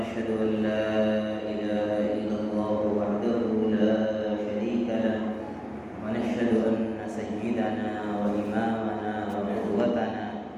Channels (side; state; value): both; identical; correlation 1.00